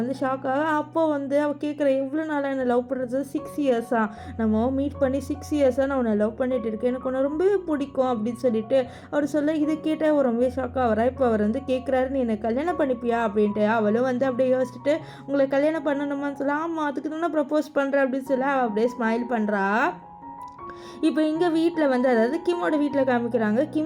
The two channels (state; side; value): identical; both; correlation 1.00